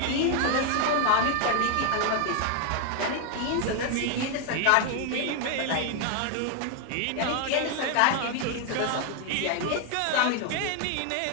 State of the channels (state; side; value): different; both; correlation 0.00